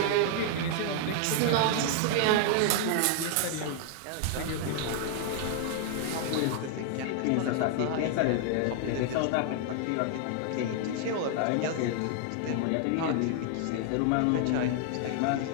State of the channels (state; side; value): different; both; correlation 0.00